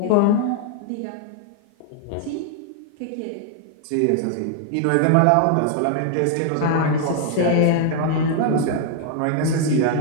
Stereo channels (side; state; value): both; different; correlation 0.00